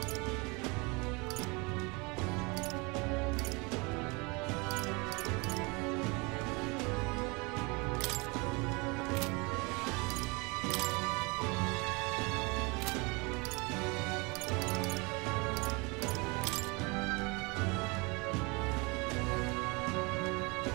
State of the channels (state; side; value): quieter; left; 27.9 dB